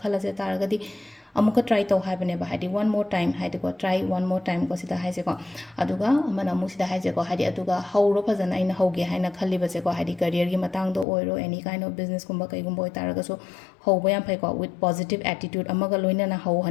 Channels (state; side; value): drops out; right; at 11.1 s